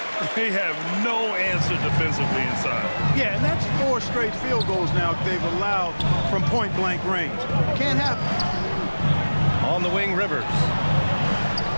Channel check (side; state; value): both; inverted; correlation -1.00